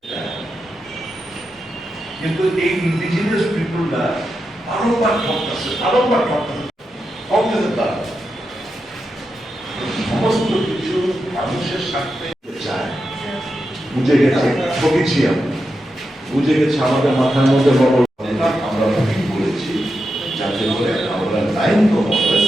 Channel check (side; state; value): both; normal; correlation 0.88